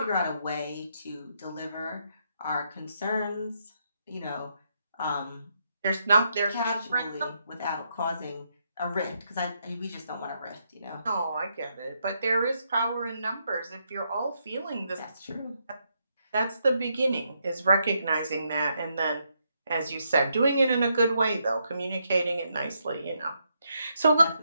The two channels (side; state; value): both; inverted; correlation -0.78